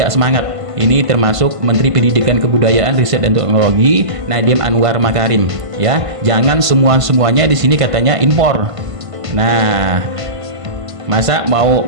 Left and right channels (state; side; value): late; left; 1.5 ms